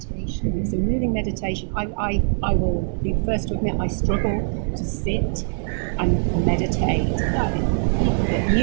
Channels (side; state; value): left; silent; digital silence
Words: It's a moving meditation. I will be the first to admit I struggle to sit and meditate.